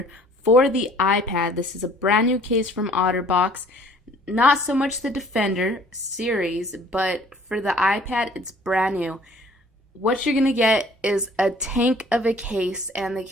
for the iPad. This is a brand new case from Otterbox. Not so much the Defender series, but for the iPad, it's brand new. What you're going to get is a tank of a case, and the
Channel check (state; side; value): normal; both; correlation 0.54